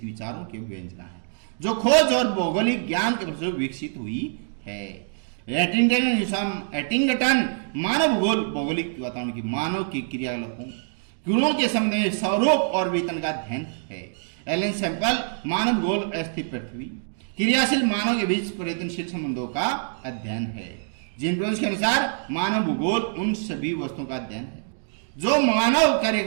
विचारों के व्यंजना है जो खोज और भौगोलिक ज्ञान के प्रति विकसित हुई है। हैटिंगटन मानव भूगोल भौगोलिक वातावरण की मानव की क्रियाकलापों गुणों के संबंध में स्वरूप और वेतन का अध्ययन है। एलन सैंपल मानव भूगोल अस्थिर पृथ्वी क्रियाशील मानव के बीच परिवर्तनशील संबंधों का अध्ययन है। जीन ब्रोन्स के अनुसार मानव भूगोल उन सभी वस्तुओं का अध्ययन है जो मानव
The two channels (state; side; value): silent; left; digital silence